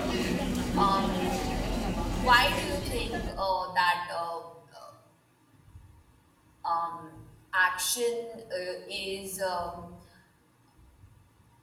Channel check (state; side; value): identical; both; correlation 1.00